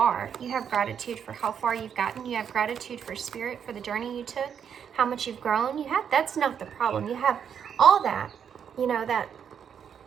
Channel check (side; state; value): left; quieter; 7.9 dB